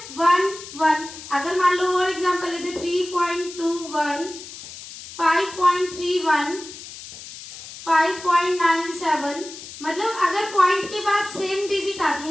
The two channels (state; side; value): noise; left; hiss, 14 dB below the sound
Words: 1, 1। अगर मान लो और एग्जांपल लेते 3.21, 5.31, 5.97, मतलब अगर पॉइंट के बाद सेम डिजिट आती